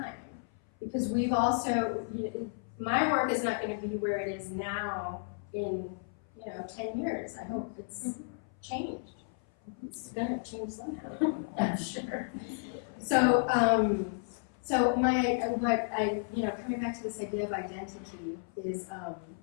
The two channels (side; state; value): right; silent; 56 dB below the other